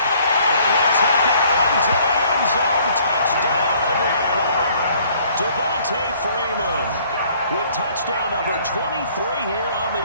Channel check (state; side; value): inverted; both; correlation -0.60